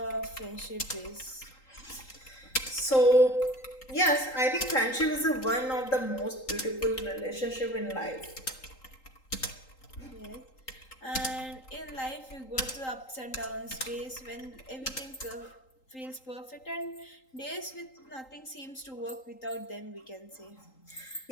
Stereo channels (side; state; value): right; late; 3.8 ms